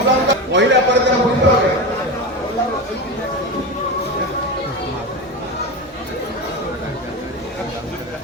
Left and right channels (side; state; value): both; normal; correlation 0.21